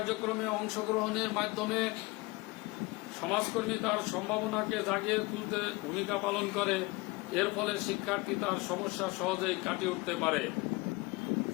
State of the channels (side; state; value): right; quieter; 23.9 dB